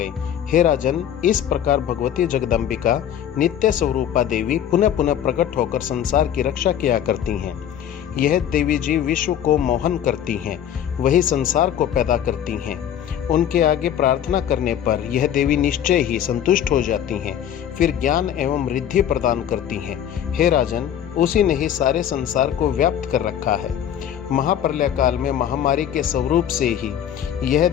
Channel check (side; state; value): right; quieter; 10.0 dB